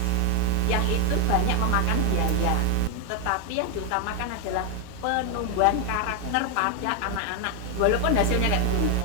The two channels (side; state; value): both; different; correlation 0.01